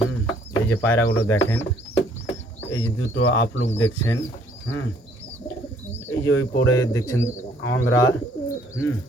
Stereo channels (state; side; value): normal; both; correlation 0.62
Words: এই যে পায়রাগুলো দেখেন, এই যে দুটো আপলুক দেখছেন। এই যে ওই পরে দেখছেন অন্ধ্রা।